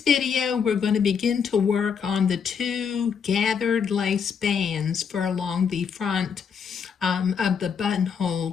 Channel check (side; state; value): right; quieter; 6.7 dB